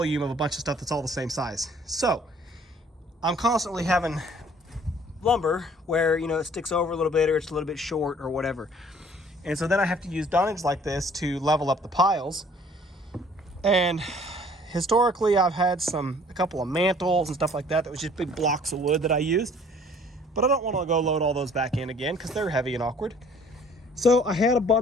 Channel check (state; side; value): normal; both; correlation 0.56